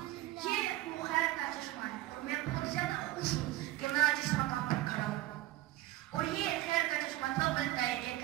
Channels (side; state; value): left; quieter; 16.6 dB